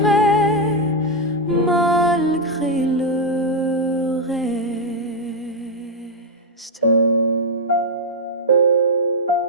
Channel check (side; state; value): both; normal; correlation 0.00